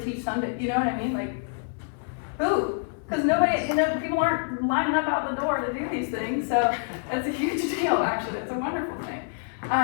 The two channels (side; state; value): right; silent; 56 dB below the other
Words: teach Sunday? You know what I mean? Like, who? Because nobody, you know, people aren't lining up out the door to do these things. So that's a huge deal, actually. It's a wonderful thing.